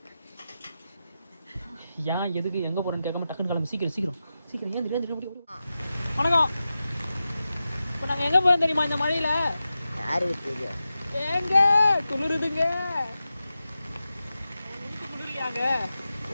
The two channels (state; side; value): inverted; both; correlation -0.92